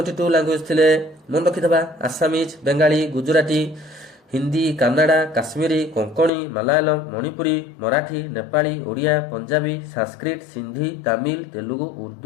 लैंग्वेज थिले मन रखि दबा आसामीज, बंगाली, गुजराती, हिंदी, कन्नड़ा, काश्मीरी, कोंकणी, मलयालम, मणिपुरी, मराठी, नेपाली, ओडिया, पंजाबी, संस्कृत, सिंधी, तमिल, तेलुगु,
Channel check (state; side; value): drops out; right; at 6.3 s